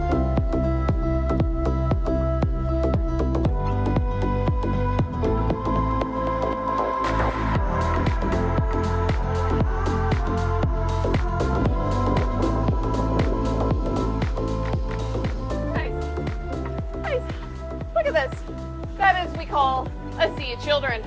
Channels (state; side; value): identical; both; correlation 1.00